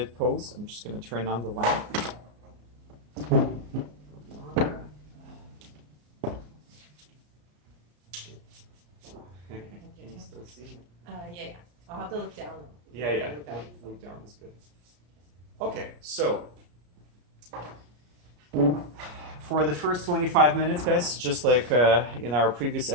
pose. I'm just going to turn on the lamp. Can you still see me? Yeah. I'll have to look down though. Yeah. Look down is good. Okay, so for the first 25 minutes, guys, just like in our previous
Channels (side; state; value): left; late; 34 ms